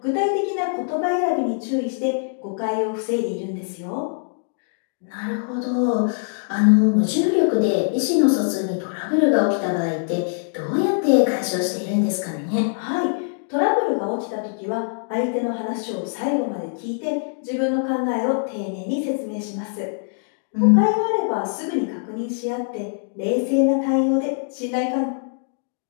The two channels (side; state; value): right; silent; digital silence